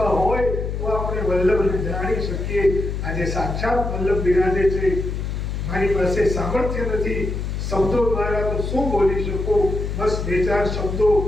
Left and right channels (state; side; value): noise; left; hum, 3 dB below the sound